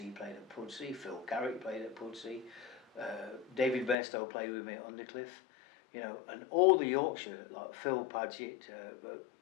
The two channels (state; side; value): drops out; right; at 4.0 s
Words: played at Pudsey. Phil Carrick played at Pudsey. David Bairstow played with me at Undercliff. You know, and all the Yorkshire, like Phil Paget,